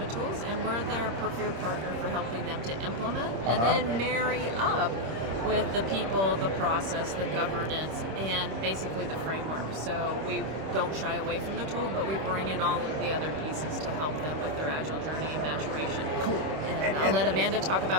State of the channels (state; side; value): late; left; 26 ms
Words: tools, and we're their preferred partner for helping them to implement and then marry up with the people, the process, the governance, and basically the framework. So we don't shy away from the tool, but we bring in all of the other pieces to help them with their Agile journey and maturation. Cool. And I'll let Amanda talk